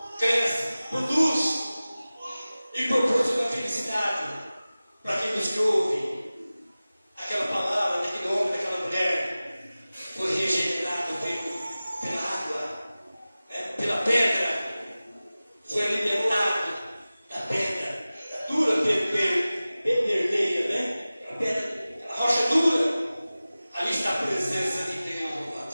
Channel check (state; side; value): inverted; both; correlation -0.97